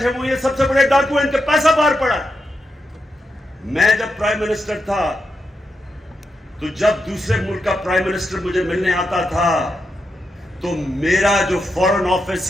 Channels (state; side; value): normal; both; correlation 0.85